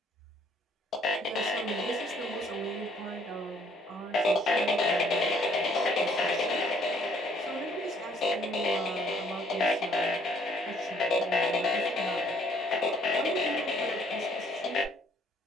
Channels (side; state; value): both; normal; correlation 0.62